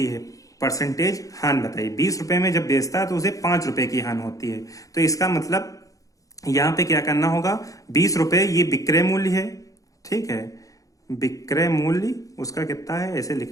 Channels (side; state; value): right; late; 0.16 ms